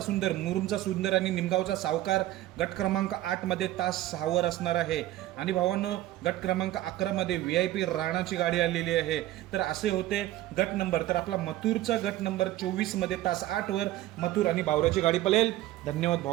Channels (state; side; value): quieter; left; 15.0 dB